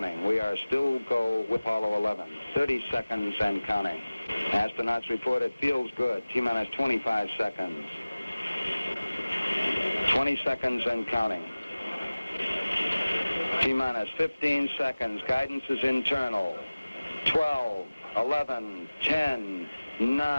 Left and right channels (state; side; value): inverted; both; correlation -0.99